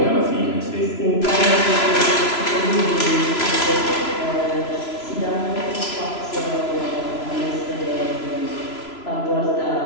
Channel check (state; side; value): late; right; 3.0 ms